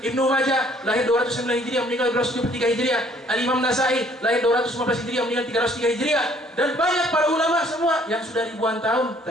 Ibnu Majah lahir 209 Hijriah, meninggal 273 Hijriah. Al-Imam Nasai lahir 215 Hijriah, meninggal 303 Hijriah. Dan banyak para ulama semua yang sudah ribuan tahun,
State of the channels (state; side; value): normal; both; correlation 0.60